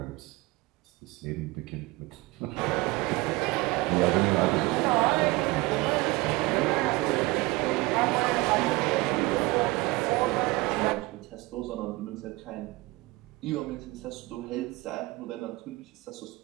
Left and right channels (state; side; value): quieter; left; 21.8 dB